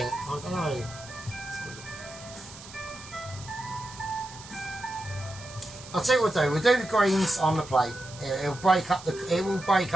don't know. I'll tell you what we'll do the greens on the plate. It will break up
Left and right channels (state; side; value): noise; right; hiss, 16 dB below the sound